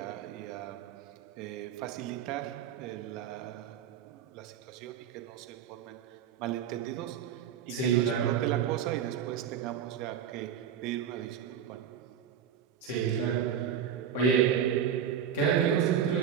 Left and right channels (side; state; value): left; quieter; 8.5 dB